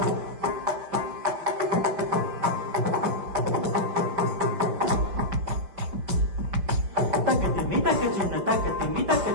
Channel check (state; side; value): late; left; 5.2 ms